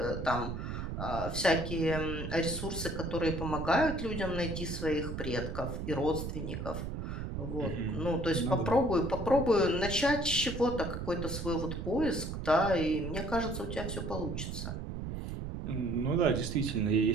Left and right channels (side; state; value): right; noise; rumble, 5 dB below the sound